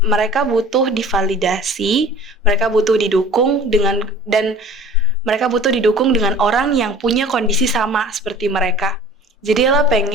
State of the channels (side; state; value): both; normal; correlation 0.44